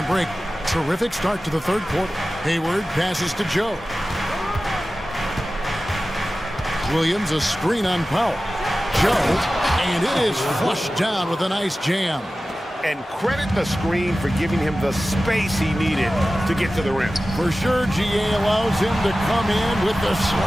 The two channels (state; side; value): normal; both; correlation 0.95